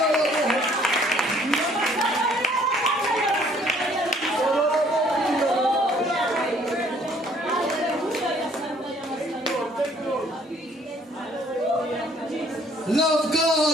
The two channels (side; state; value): both; normal; correlation 0.60